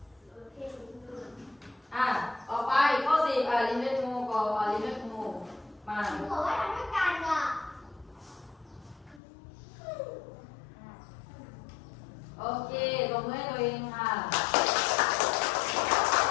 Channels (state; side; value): drops out; right; at 9.2 s